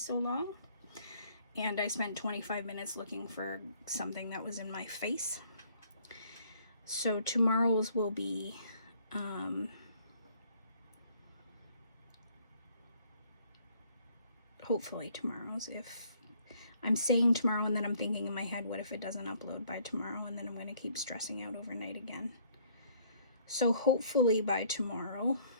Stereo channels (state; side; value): inverted; both; correlation -0.62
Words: long. And I spent 25 minutes looking for something that was in my face. So tomorrow's will be hopefully tomorrow's. If I'm saying tomorrow and then I'm thinking in my head, what if it doesn't upload by tomorrow, and then I'm going to keep stressing out overnight again. So hopefully by tomorrow's